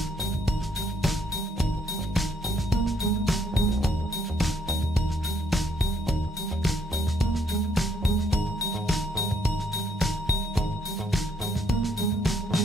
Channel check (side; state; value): both; normal; correlation 0.70